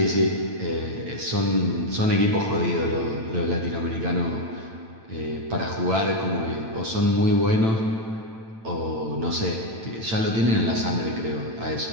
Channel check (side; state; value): left; late; 9.0 ms